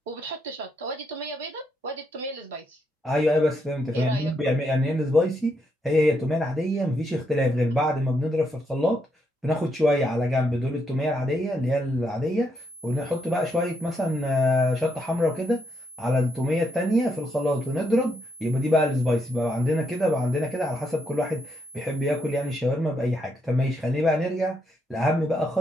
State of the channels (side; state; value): both; normal; correlation 0.78